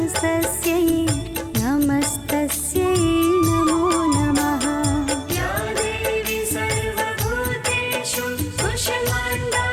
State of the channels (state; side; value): identical; both; correlation 1.00